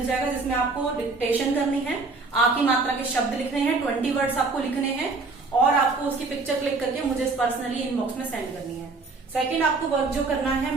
जाएगा जिसमें आपको डिक्टेशन करनी है, आ की मात्रा के शब्द लिखने हैं, 20 वर्ड्स आपको लिखने हैं, और आपको उसकी पिक्चर क्लिक करके मुझे पर्सनली इनबॉक्स में सेंड करनी है। सेकंड आपको वर्क जो करना है,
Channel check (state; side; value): quieter; left; 3.8 dB